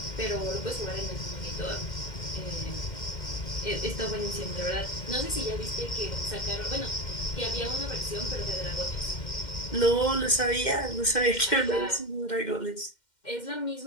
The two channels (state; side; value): late; right; 2.1 ms